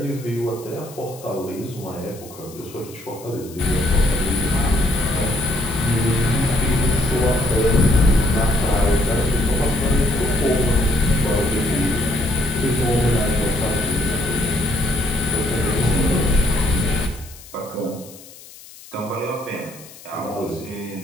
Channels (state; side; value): noise; left; hiss, 19 dB below the sound